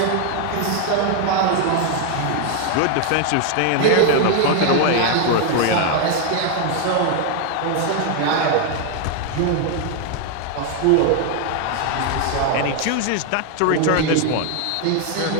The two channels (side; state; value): both; different; correlation 0.01